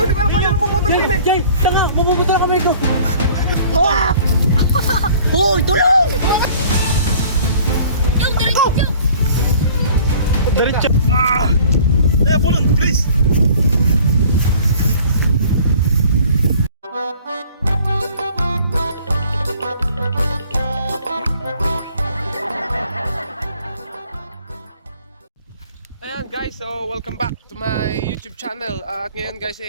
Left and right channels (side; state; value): both; inverted; correlation -0.51